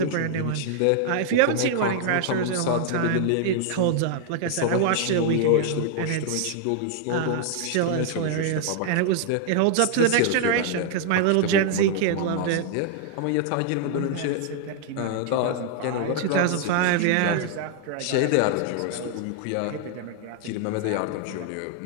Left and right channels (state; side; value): different; both; correlation 0.00